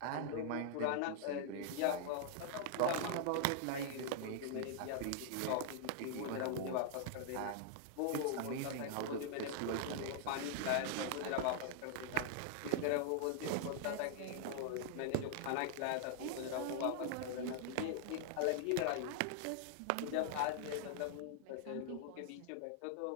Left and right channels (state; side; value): different; both; correlation -0.01